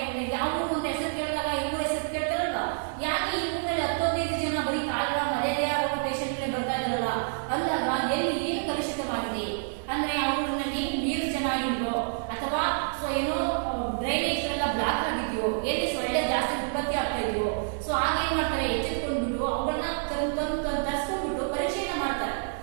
ಯಾವ ಊರು ಅಂತ ಹೆಸರು ಕೇಳಿದಾಗ ಈ ಊರ ಹೆಸರು ಕೇಳ್ತಾರಲ್ವಾ, ಯಾಕೆ ಈ ಊರಿನಲ್ಲಿ 10-15 ಜನ ಬರೀ ಕಾಲ್ರಾ ಮಲೇರಿಯಾ ರೋಗ ಪೇಷಂಟ್ಗಳೇ ಬರ್ತಾ ಇದ್ದಾರಲ್ಲ ಅಂದಾಗ ಎಲ್ಲಿ ಏನು ಕಲುಷಿತವಾಗಿದೆ ಅಂದ್ರೆ ಆ ಊರಿನಲ್ಲಿ ನೀರು ಚೆನ್ನಾಗಿಲ್ವೋ ಅಥವಾ ಸೊ ಏನೋ ಡ್ರೈನೇಜ್ಗಳೆಲ್ಲ ಬ್ಲಾಕ್ ಆಗಿದೆಯೋ, ಎಲ್ಲಿ ಸೊಳ್ಳೆ ಜಾಸ್ತಿ ಉತ್ಪತ್ತಿ ಆಗ್ತಾ ಇದೆಯೋ, ಸೊ ಆಗೇನ್ ಮಾಡ್ತಾರೆ ಎಚ್ಚೆತ್ಕೊಂಡ್ಬಿಟ್ಟು ಅವುಗಳನ್ನ ತರಿಸ್ಕೊಂಡ್ಬಿಟ್ಟು ಪರೀಕ್ಷೆಯನ್ನ ಮಾಡ್ತಾರೆ.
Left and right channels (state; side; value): silent; left; digital silence